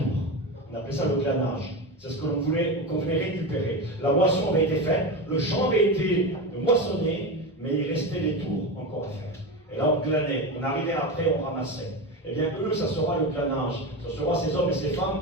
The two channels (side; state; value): both; normal; correlation 0.20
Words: On appelait ça le glanage. C'est ce qu'on venait récupérer. La moisson avait été faite, le champ avait été moissonné, mais il restait des tours encore à faire. Et là, on glanait, on arrivait après, on ramassait. Eh bien, eux, ça sera le glanage. Ça sera ces hommes et ces femmes.